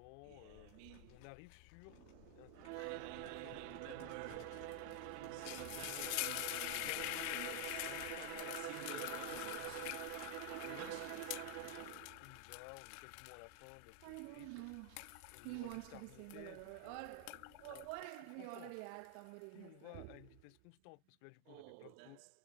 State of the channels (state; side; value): different; both; correlation 0.00